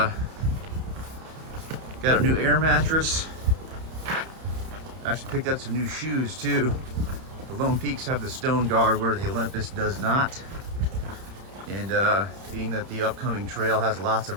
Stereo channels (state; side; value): late; left; 31 ms